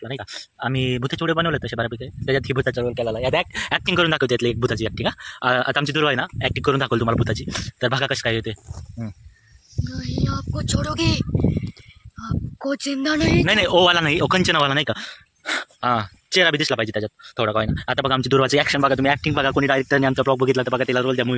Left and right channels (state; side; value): identical; both; correlation 1.00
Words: नाही का. आम्ही भूताचे व्हिडिओ बनवले तसे बऱ्यापैकी. त्याच्यात ही भूताचा रोल केला या ॲक्टिंग करून दाखवते त्यातली एक भूताची ॲक्टिंग. आता आमची दुर्वा आहे ना ॲक्टिंग करून दाखवलं तुम्हाला भूताची. तर बघा कसं काय येते. नहीं आपको छोड़ोगे, आपको जिंदा नहीं. नाही ओवाला नाही कंचनावाला नाही का. हां चेहरा बी दिसला पाहिजे त्याच्यात थोडा काय ना. आता बघा आमची दुर्वाची ॲक्शन बघा तुम्ही. ॲक्टिंग बघा कोणी डायरेक्टरने आमचा ब्लॉग बघितला तर बघा त्याला रोल त्या